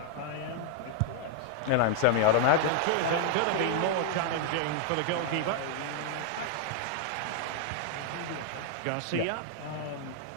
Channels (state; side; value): different; both; correlation -0.01